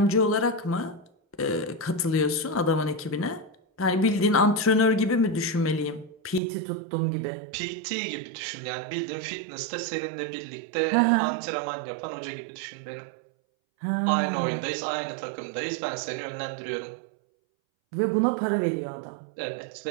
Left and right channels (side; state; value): left; drops out; at 6.4 s